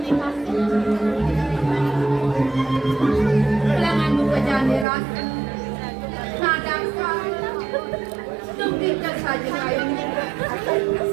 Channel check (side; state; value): left; drops out; at 4.9 s